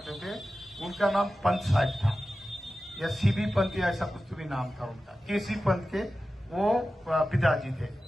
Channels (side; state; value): both; normal; correlation 0.94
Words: थे, उनका नाम पंत साहब था या सीबी पंत या ऐसा कुछ तो भी नाम था उनका, केसी पंत के वो पिताजी थे।